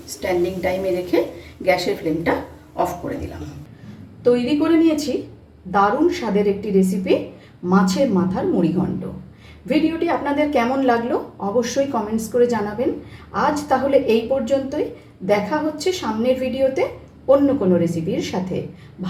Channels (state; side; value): identical; both; correlation 1.00